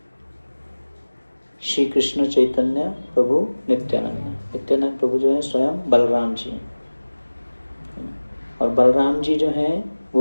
श्री कृष्ण चैतन्य प्रभु नित्यानंद। नित्यानंद प्रभु जो है स्वयं बलराम जी हैं, और बलराम जी जो हैं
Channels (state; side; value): inverted; both; correlation -1.00